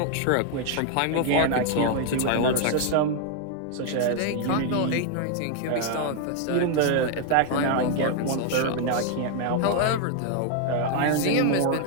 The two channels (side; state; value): both; different; correlation 0.00